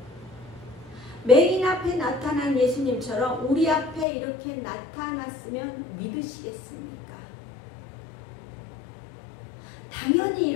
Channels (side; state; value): right; drops out; at 4.0 s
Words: 맹인 앞에 나타난 예수님처럼 우리 앞에 이렇게 나타났으면 믿으시겠습니까? 당연히